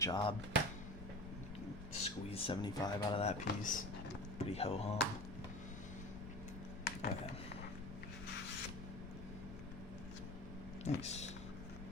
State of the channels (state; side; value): noise; left; rumble, 12 dB below the sound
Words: Squeeze 75 out of that piece. Pretty ho-hum. Okay. Nice.